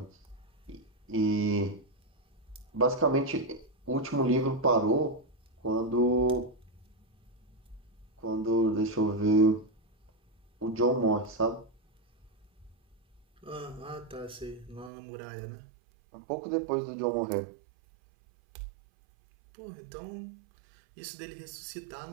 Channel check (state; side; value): drops out; left; at 14.9 s